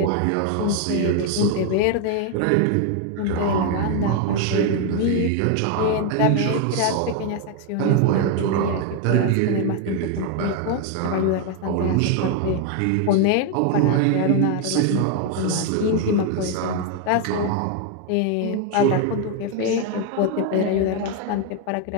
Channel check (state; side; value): different; both; correlation 0.01